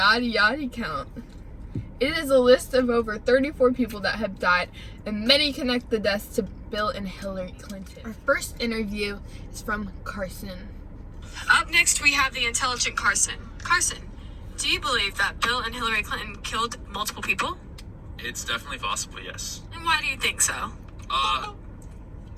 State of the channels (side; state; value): both; identical; correlation 1.00